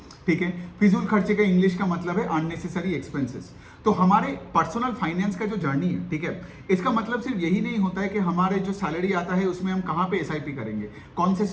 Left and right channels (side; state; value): both; identical; correlation 1.00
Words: ठीक है, फिजूल खर्चे का इंग्लिश का मतलब है अननेसेसरी एक्सपेंसेस। तो हमारे पर्सनल फाइनेंस का जो जर्नी है, ठीक है, इसका मतलब सिर्फ यही नहीं होता है कि हमारे जो सैलरी आता है उसमें हम कहाँ पे एसआईपी करेंगे, कौन से